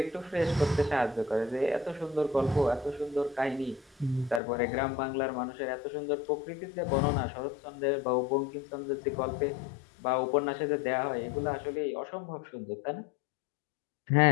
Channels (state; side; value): drops out; right; at 4.4 s